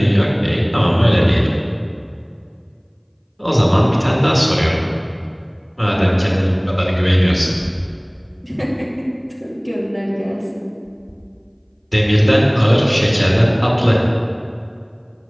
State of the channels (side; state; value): both; identical; correlation 1.00